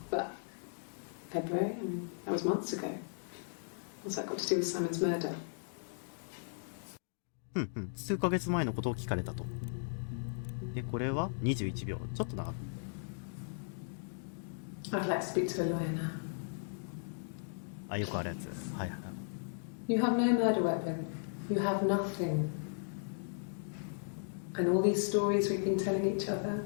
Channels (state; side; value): silent; right; digital silence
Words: But February? I mean, that was months ago. What's that got to do with Simon's murder? 数ヶ月前のことを聞かれたと。で、これは21秒。ちょっと長く。I'd like to speak to a lawyer now. あ、よくあるやつ。はいはい。 You have no murder weapon. You have nothing. And all these stories we've been telling each other.